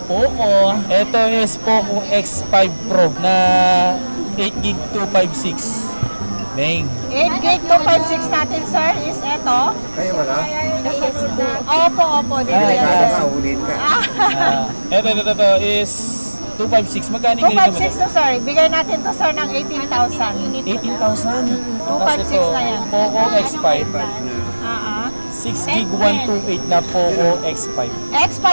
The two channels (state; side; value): inverted; both; correlation -1.00